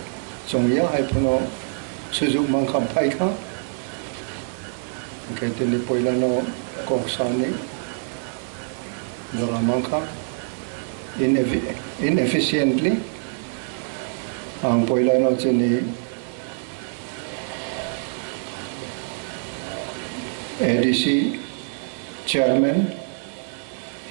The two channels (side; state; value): left; silent; digital silence